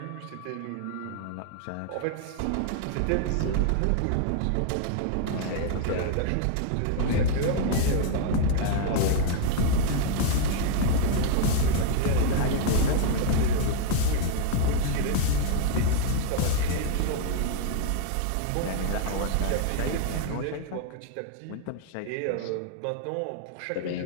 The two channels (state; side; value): different; both; correlation 0.00